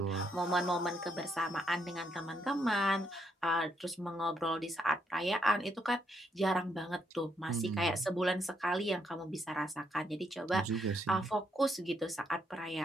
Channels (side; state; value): both; normal; correlation 0.76